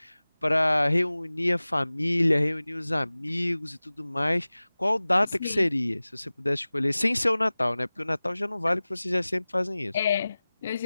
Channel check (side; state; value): both; inverted; correlation -0.98